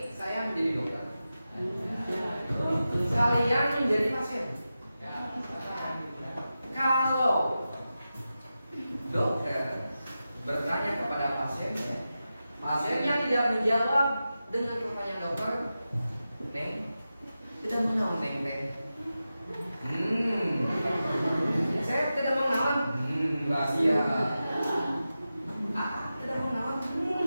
saya menjadi dokter. Kalian menjadi pasien. Kalau dokter bertanya kepada pasiennya, pasiennya tidak menjawab dengan pertanyaan dokter, Neng, tidak mengenal Neng Neng. Saya tidak mengenal. Rahasia. Tidak mengenal.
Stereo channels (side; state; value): both; inverted; correlation -0.92